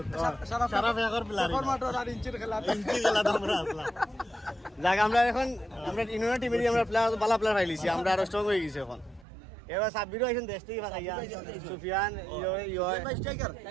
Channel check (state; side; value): drops out; left; at 9.2 s